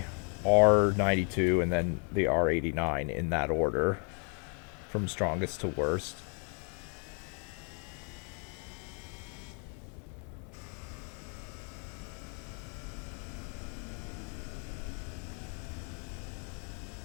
R92, and then the R89 in that order, from strongest to worst.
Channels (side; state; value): right; quieter; 38.7 dB